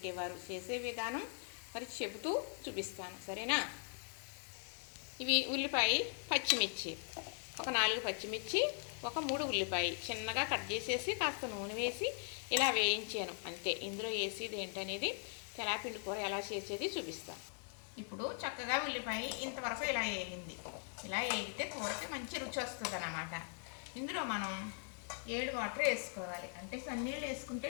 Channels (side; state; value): right; silent; 51 dB below the other